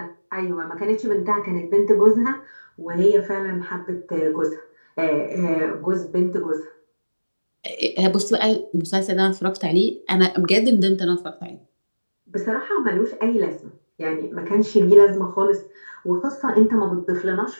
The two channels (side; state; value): both; inverted; correlation -1.00